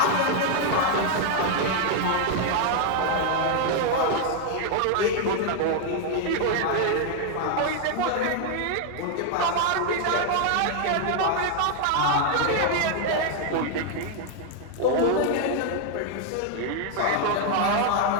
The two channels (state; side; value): different; both; correlation 0.00